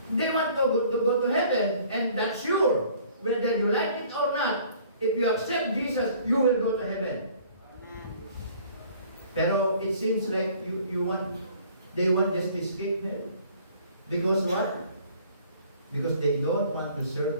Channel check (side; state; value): both; inverted; correlation -0.54